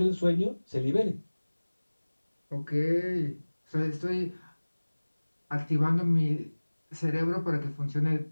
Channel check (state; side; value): inverted; both; correlation -1.00